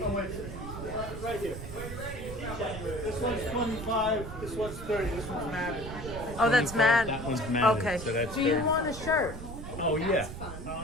Right here. This one's 25, this one's 30, this one's matted. oh, that's mad. That one's matted, Okay. so that's Do you 30. want a shirt? Oh, yeah.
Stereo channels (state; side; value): noise; right; rumble, 9 dB below the sound